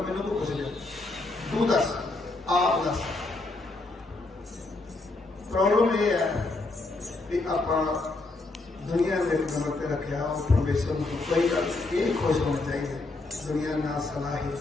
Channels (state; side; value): quieter; right; 3.3 dB